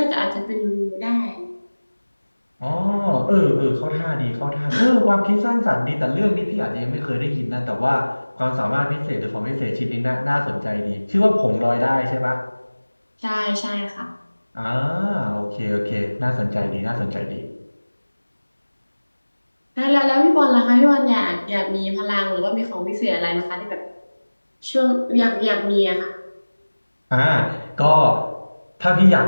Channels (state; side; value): inverted; both; correlation -1.00